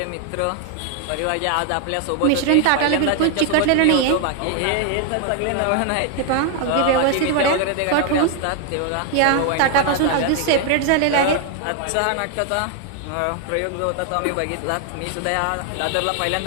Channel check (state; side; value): different; both; correlation 0.00